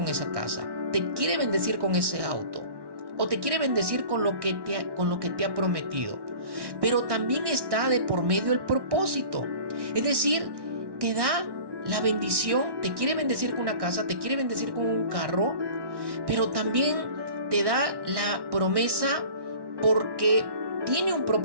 esa casa, te quiere bendecir con ese auto, o te quiere bendecir con lo que te ha prometido. Pero también está de por medio el propósito. Es decir, te da la bendición, te quiere bendecir con una casa, te quiere bendecir con un carro, pero también te da la promesa porque tiene un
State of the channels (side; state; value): left; late; 1.1 ms